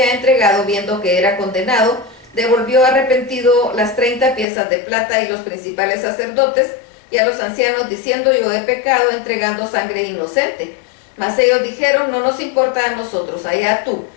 entregado, viendo que era condenado, devolvió arrepentido las 30 piezas de plata, y los principales sacerdotes y a los ancianos diciendo: yo he pecado entregando sangre inocente. Mas ellos dijeron: no nos importa a nosotros, allá tú.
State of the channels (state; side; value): drops out; right; at 4.5 s